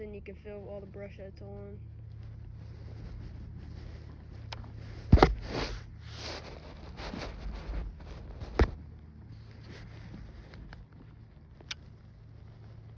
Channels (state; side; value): identical; both; correlation 1.00